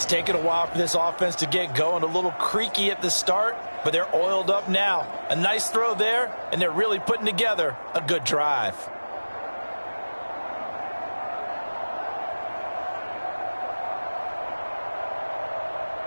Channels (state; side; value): inverted; both; correlation -1.00